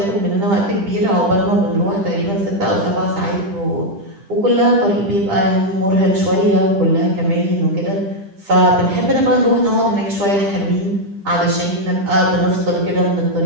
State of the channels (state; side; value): late; left; 10 ms